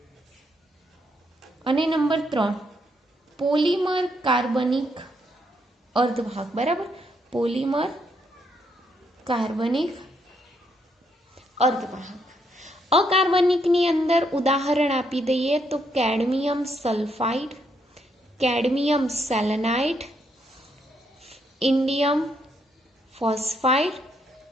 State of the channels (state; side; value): normal; both; correlation 0.75